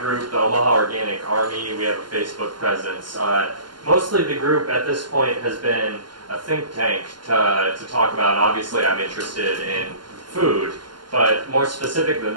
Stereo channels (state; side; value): late; left; 0.71 ms